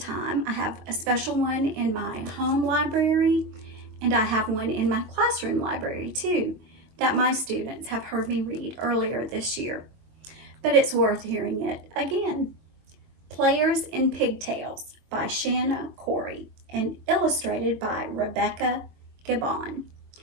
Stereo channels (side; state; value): left; late; 22 ms